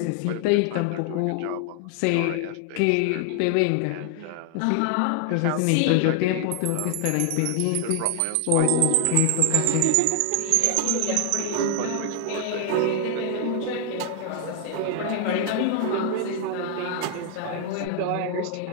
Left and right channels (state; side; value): different; both; correlation 0.00